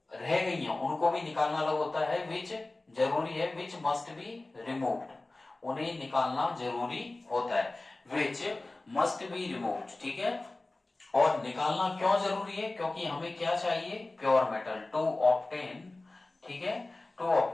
रह गई हैं उनको भी निकालना अलग होता है, विच जरूरी है, विच मस्ट बी रिमूव्ड, उन्हें निकालना जरूरी होता है, विच मस्ट बी रिमूव्ड, ठीक है। और निकालना क्यों जरूरी है, क्योंकि हमें क्या चाहिए, प्योर मेटल, टू ऑब्टेन, ठीक है, टू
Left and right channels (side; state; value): right; quieter; 3.0 dB